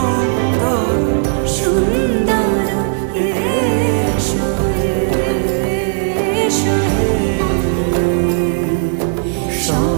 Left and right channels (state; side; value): silent; left; 68 dB below the other